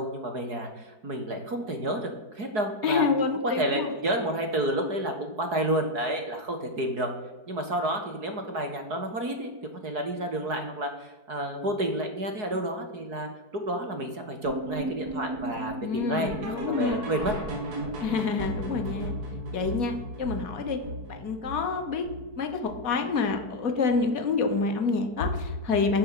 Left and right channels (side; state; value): left; late; 4.8 ms